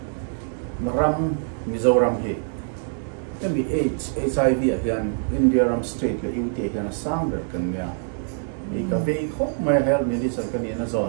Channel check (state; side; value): silent; left; 62 dB below the other